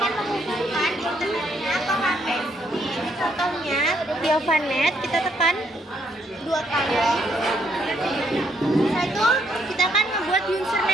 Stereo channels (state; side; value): normal; both; correlation 0.73